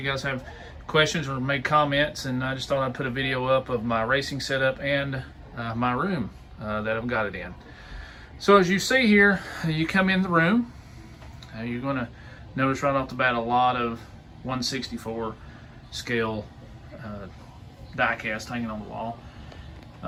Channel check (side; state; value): both; identical; correlation 1.00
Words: guys have questions or make comments, and I just thought I'd put a video up of my racing setup and my room that I've got it in. So as you see here, you come in the room, you're going to notice right off the bat a lot of 1/64 scale diecast hanging on the